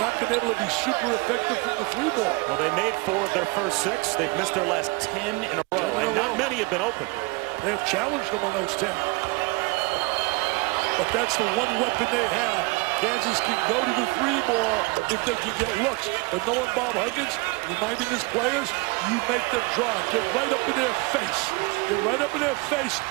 not been able to be super effective from the 3 ball. Well, they made 4 of their first 6. They've missed their last 10 in a row, and not many have been open. They have challenged them on those 10. But that's the one weapon they have. Kansas can go to the 3 ball if they can get looks. But knowing Bob Huggins, reminding his players, you make them drive. Get right up in their face. Get right up in their face.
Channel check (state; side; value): quieter; left; 26.2 dB